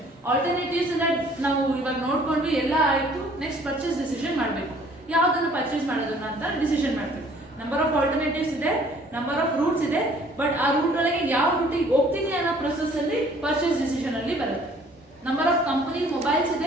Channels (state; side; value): normal; both; correlation 0.56